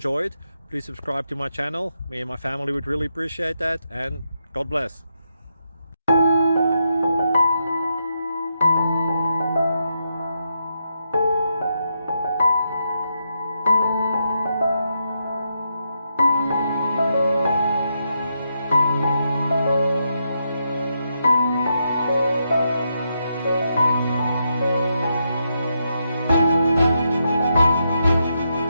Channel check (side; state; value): both; inverted; correlation -0.82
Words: Please subscribe to my channel. Me and my family would really appreciate that, and God bless.